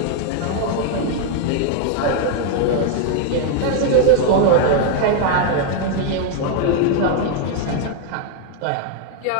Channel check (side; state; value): both; different; correlation 0.00